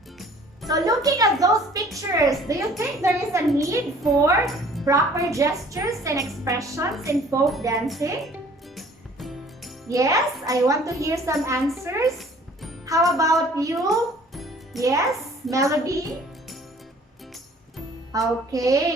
So looking at those pictures, do you think there is a need for proper gestures and expressions in folk dancing? Yes, I want to hear some answers. How about you? Yes, Melody?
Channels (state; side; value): normal; both; correlation 0.53